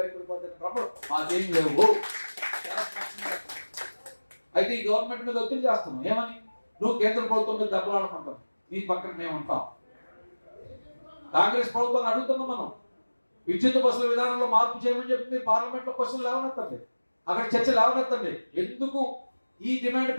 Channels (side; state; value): both; inverted; correlation -1.00